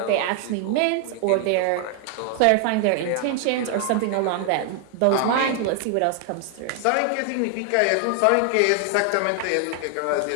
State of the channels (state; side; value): different; both; correlation 0.00